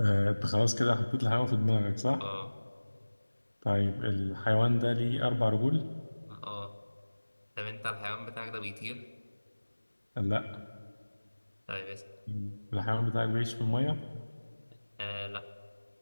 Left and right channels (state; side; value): inverted; both; correlation -1.00